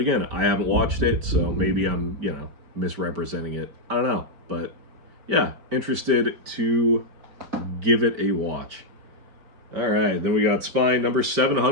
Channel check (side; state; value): left; late; 5.2 ms